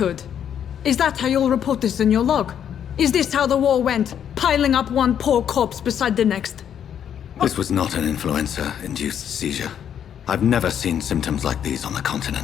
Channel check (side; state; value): right; quieter; 9.1 dB